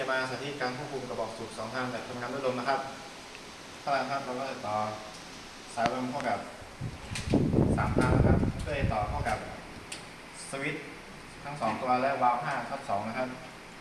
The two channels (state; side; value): identical; both; correlation 1.00